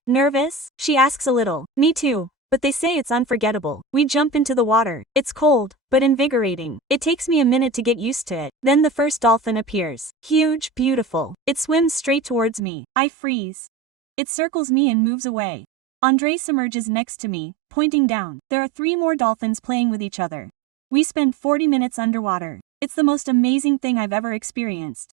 Nervous? She asks a little. Me too. But they say it's unforgettable. We jump into the water. It's cold, but invigorating. It takes me a minute to get used to it. Then the first dolphin appears. Huge, beautiful. It swims straight towards me. I freeze. It circles me and moves away. Andres emerges next to me, pointing down. There are 3 more dolphins playing with each other. We spend 40 minutes underwater. It's the most amazing thing I've ever experienced.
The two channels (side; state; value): left; drops out; at 12.7 s